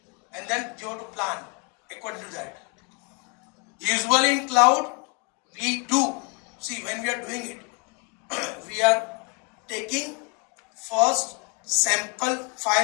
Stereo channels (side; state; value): right; quieter; 34.3 dB